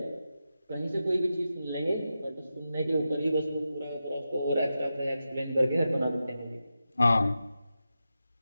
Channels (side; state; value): both; inverted; correlation -0.90